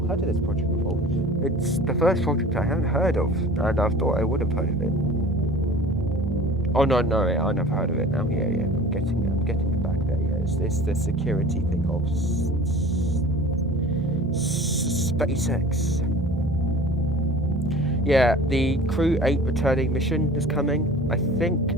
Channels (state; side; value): normal; both; correlation 0.42